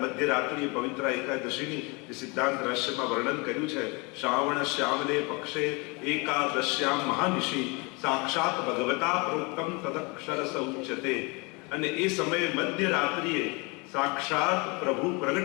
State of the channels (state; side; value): quieter; right; 28.9 dB